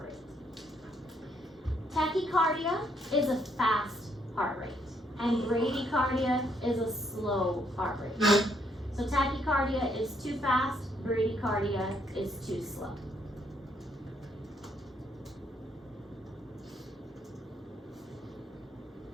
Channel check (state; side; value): normal; both; correlation 0.72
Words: rate. Tachycardia is a fast heart rate, and bradycardia is a slow heart rate. So tachycardia is too fast, bradycardia is too slow.